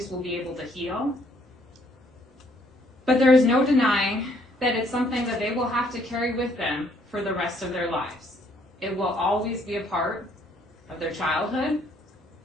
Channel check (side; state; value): both; normal; correlation 0.66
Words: will be able to heal. But there is no denying that it's something that they will have to carry with them for the rest of their lives. It will always be a part of their childhood,